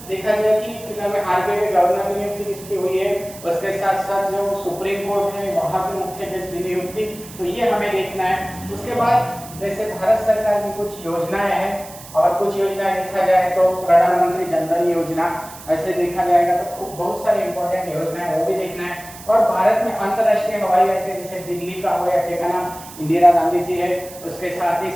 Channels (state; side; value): noise; right; hiss, 17 dB below the sound